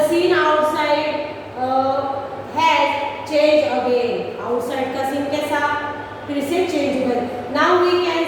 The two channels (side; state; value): both; identical; correlation 1.00